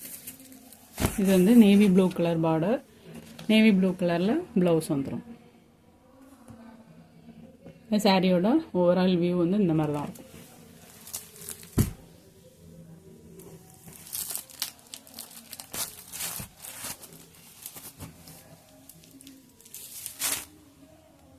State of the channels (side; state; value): both; identical; correlation 1.00